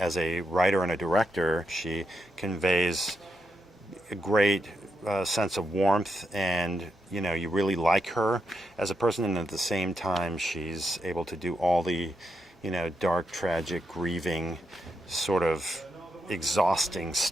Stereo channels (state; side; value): normal; both; correlation 0.83